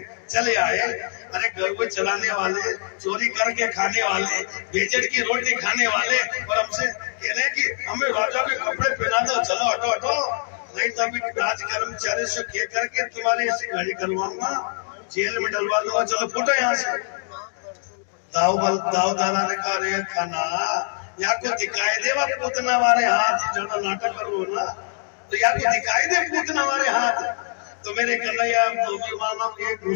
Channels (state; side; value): silent; right; 56 dB below the other